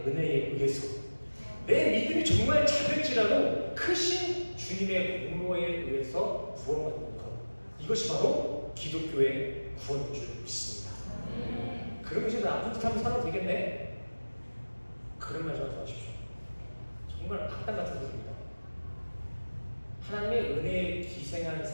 은혜에 의해서, 내 믿음이 정말 작을지라도 크신 주님의 공로에 의해서 구원받는 것, 이것이 바로 기독교의 구원인 줄 믿습니다. 그럼 이제 나쁜 짓 하면 살아도 되겠네? 그런 말 좀 하지 마십시오. 정말 악당 같은 소리입니다. 하나님의 은혜에 기생한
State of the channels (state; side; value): inverted; both; correlation -1.00